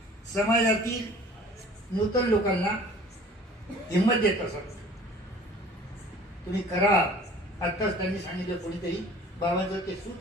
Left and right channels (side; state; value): both; normal; correlation 0.48